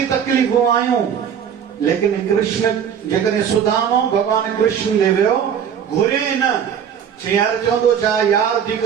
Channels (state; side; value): quieter; left; 8.2 dB